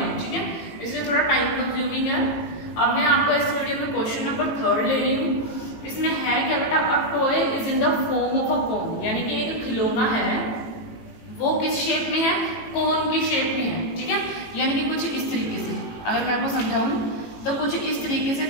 ठीक है, इसलिए थोड़ा टाइम कंज्यूमिंग है। अब मैं आपको इस वीडियो में क्वेश्चन नंबर 3 ले रही हूँ। इसमें है क्या बेटा, a toy is in the form of a cone, यानी कि एक खिलौना है, वो किस शेप में है, कोन की शेप में है, ठीक है, यानी कि कुछ इस तरीके से। अगर मैं आपको समझाऊं तो कुछ इस तरीके से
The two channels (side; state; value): right; late; 18 ms